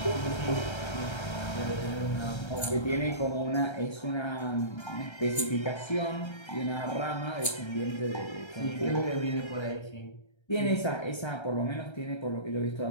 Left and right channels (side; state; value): right; late; 1.3 ms